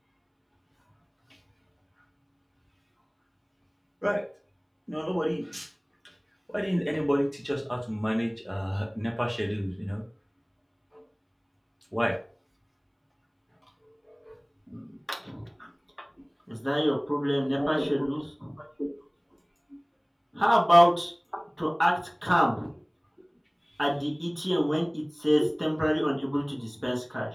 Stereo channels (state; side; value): identical; both; correlation 1.00